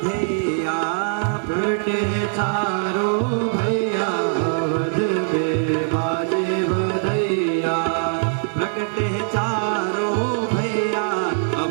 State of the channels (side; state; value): left; silent; digital silence